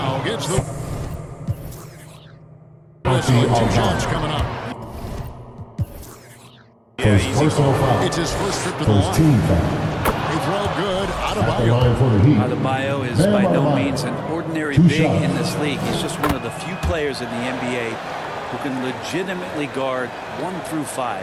Gets the whistle. 2 shots coming up. Yeah, easy call. It's his first trip to the line. They throw good. Adebayo is by no means an ordinary big in this league. He's just one of the few players in the NBA who can legitimately guard 1 through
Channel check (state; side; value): identical; both; correlation 1.00